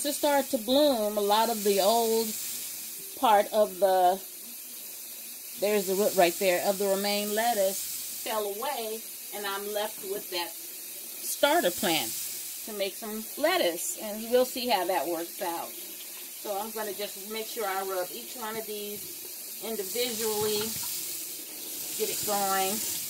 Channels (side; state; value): both; identical; correlation 1.00